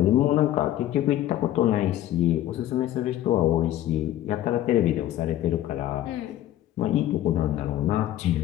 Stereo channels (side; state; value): right; quieter; 13.1 dB